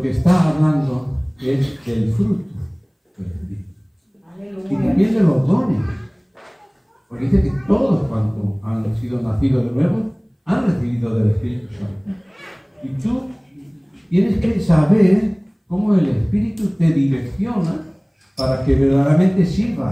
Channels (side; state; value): both; identical; correlation 1.00